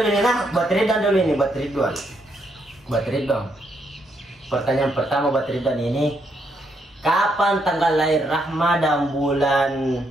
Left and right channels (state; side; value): normal; both; correlation 0.76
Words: ini nah, buat Ridwan. Pertanyaan pertama buat Ridwan ini, kapan tanggal lahir Rahma dan bulan